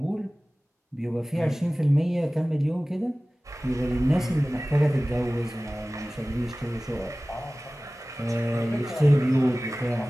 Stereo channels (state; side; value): normal; both; correlation 0.98